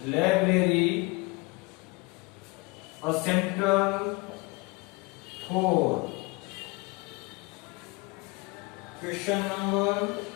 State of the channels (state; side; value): quieter; right; 26.5 dB